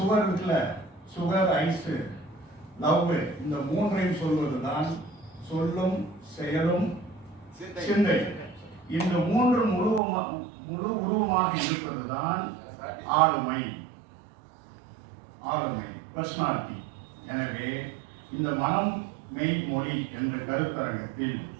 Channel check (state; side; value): drops out; left; at 10.0 s